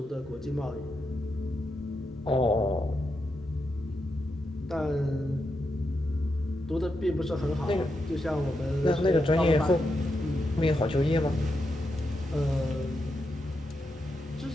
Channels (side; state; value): both; normal; correlation 0.85